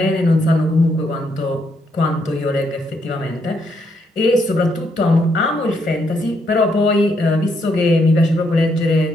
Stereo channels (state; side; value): normal; both; correlation 0.75